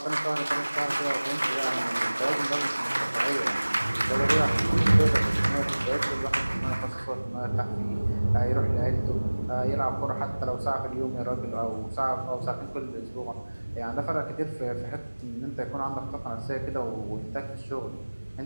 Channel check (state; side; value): inverted; both; correlation -1.00